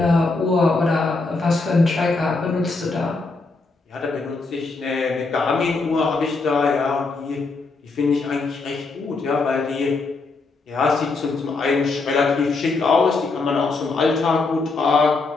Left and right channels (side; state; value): right; quieter; 3.8 dB